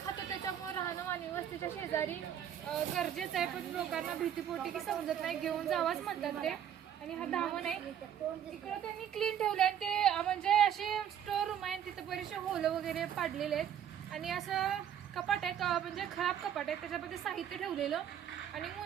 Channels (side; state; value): left; quieter; 9.6 dB